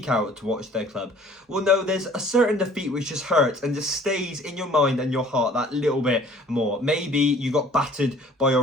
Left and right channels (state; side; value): normal; both; correlation 0.53